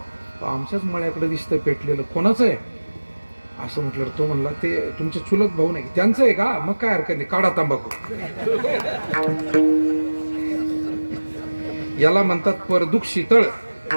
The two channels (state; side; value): inverted; both; correlation -1.00